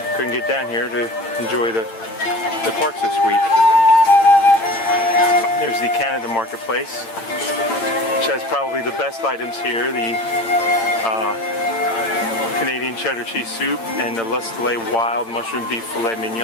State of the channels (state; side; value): late; right; 8.8 ms